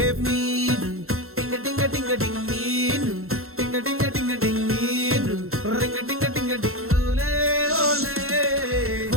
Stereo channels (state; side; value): late; left; 0.62 ms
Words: మీను టింగ టింగ టింగ టింగ్ మీను, టింగ టింగ టింగ టింగ్ మీను, రింగ టింగ టింగ టింగ్ ఓలే ఓలే.